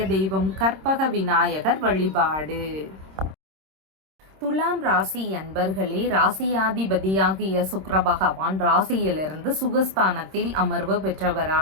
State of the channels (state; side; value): late; left; 26 ms